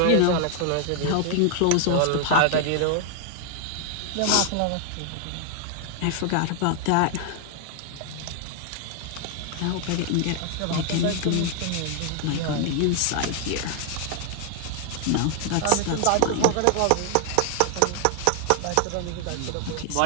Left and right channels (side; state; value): both; different; correlation 0.00